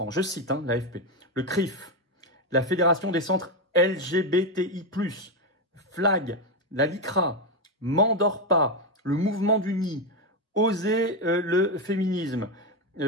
je cite l'AFP, le CRIF, la Fédération des centres LGBTI+, Flag, la LICRA, M'endors pas, le mouvement du nid, Oser le féminisme,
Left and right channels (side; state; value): both; normal; correlation 0.08